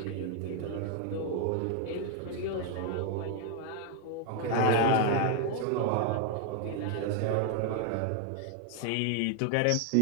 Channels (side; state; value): both; different; correlation 0.00